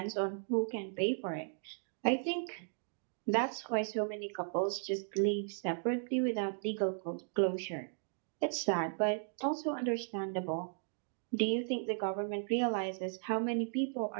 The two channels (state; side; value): silent; left; digital silence